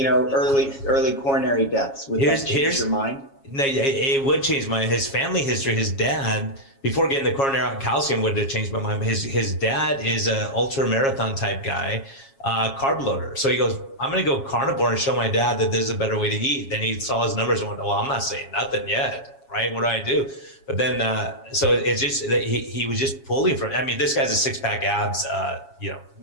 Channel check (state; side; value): late; right; 7.3 ms